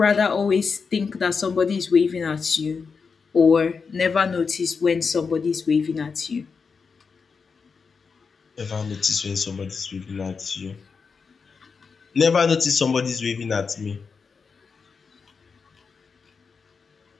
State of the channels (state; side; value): quieter; right; 5.3 dB